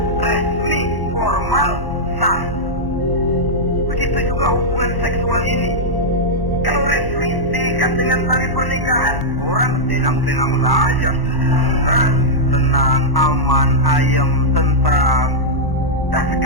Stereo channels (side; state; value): right; late; 1.1 ms